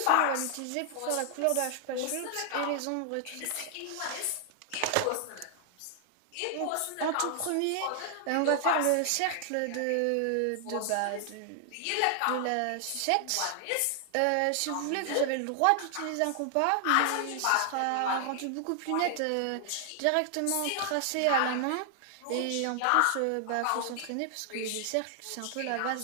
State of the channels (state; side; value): different; both; correlation 0.00